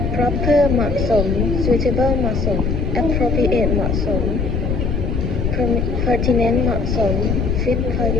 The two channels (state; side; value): noise; left; rumble, 1 dB below the sound